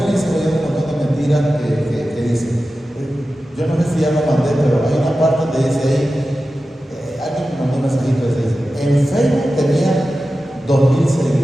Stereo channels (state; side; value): normal; both; correlation 0.94